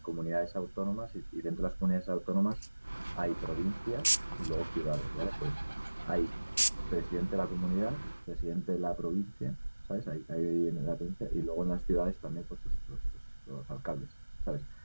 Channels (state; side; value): inverted; both; correlation -1.00